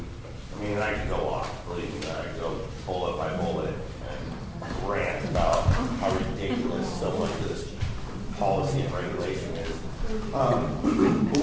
I mean, I could go off, believe me, I could go bullet by bullet and rant about how ridiculous so much of this policy and regulation is. But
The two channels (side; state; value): both; identical; correlation 1.00